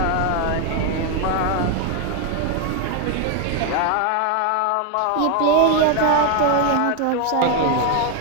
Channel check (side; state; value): both; different; correlation 0.01